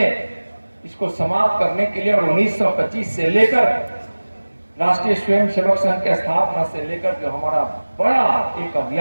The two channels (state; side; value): inverted; both; correlation -1.00